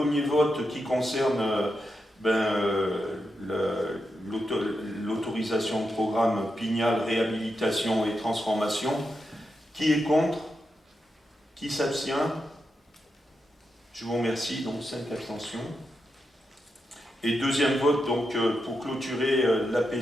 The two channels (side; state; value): both; normal; correlation 0.86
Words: vote qui concerne l'autorisation de programme Pignal, réhabilitation et transformation. Qui est contre? Qui s'abstient? Je vous remercie. Donc 5 abstentions. Et deuxième vote donc pour clôturer la